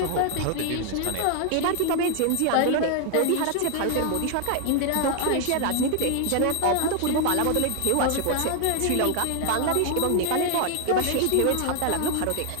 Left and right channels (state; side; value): different; both; correlation 0.00